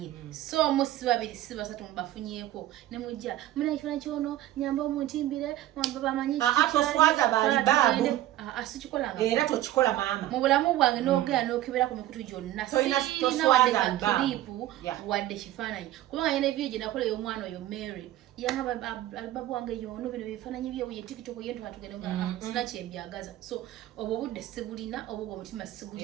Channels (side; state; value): left; quieter; 14.2 dB